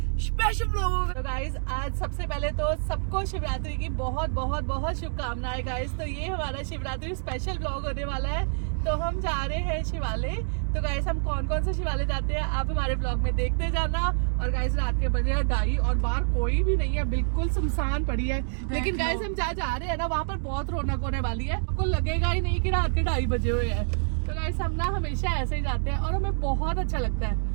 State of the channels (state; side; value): silent; left; digital silence